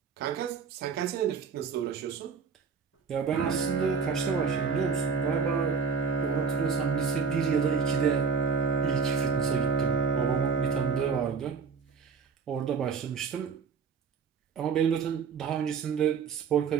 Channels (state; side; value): quieter; left; 5.6 dB